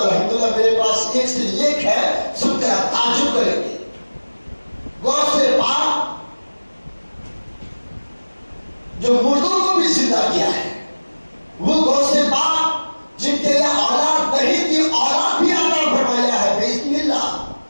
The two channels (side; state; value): both; inverted; correlation -1.00